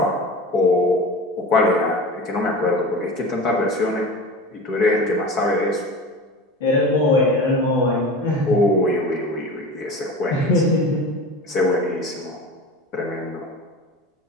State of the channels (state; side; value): normal; both; correlation 0.32